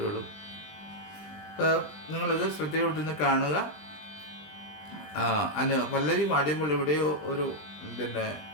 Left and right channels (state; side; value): late; right; 20 ms